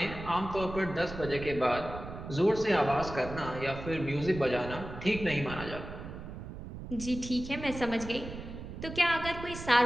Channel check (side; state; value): right; noise; rumble, 10 dB below the sound